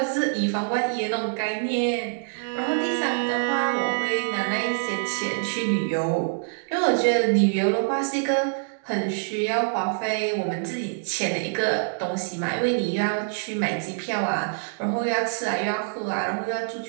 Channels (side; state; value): left; silent; digital silence